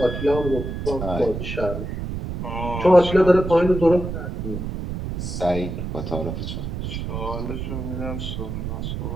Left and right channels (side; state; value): right; noise; rumble, 5 dB below the sound